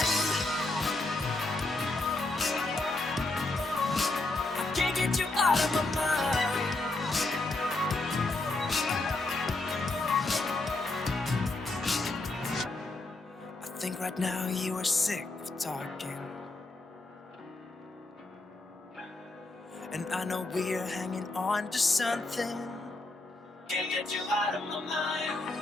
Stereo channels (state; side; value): quieter; right; 3.0 dB